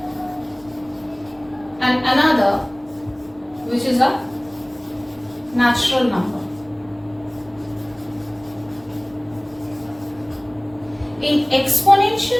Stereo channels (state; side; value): noise; right; rumble, 28 dB below the sound